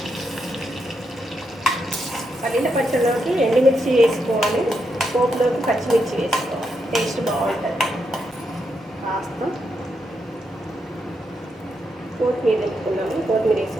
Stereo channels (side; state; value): both; normal; correlation 0.82